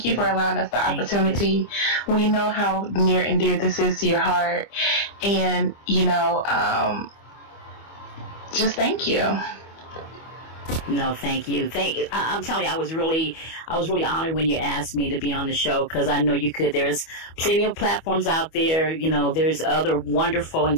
you for allowing us the opportunity. We know how near and dear this is to your heart. And, you know, just thank you. No, thank you. I'm telling you, I was really honored when you asked me to be on the show because I know you could. There's plenty of platforms out there. You know, there's other wonderful and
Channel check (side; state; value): right; late; 25 ms